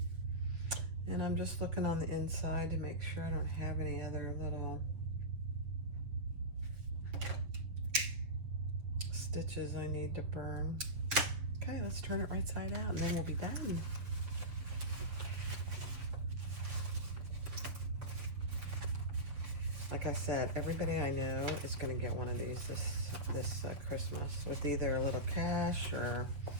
And I'm just looking on the inside to make sure I don't have any other little stitches I need to burn. Okay, let's turn it right side out and then we'll be done. Like I said, everybody I know is going to get one of these this Christmas with either a little cash or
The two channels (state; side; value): late; left; 7.5 ms